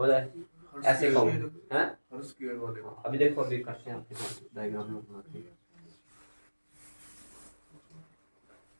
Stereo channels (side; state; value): both; inverted; correlation -1.00